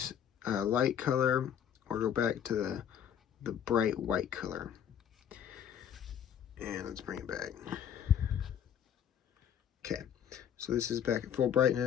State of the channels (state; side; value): quieter; right; 9.0 dB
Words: light color, or go back to the bright white color. And let's bring it back. Okay, so this is back at full